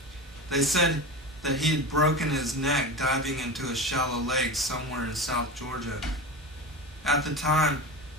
They said that he had broken his neck diving into a shallow lake somewhere in South Georgia. At the time,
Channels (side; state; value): both; normal; correlation 0.26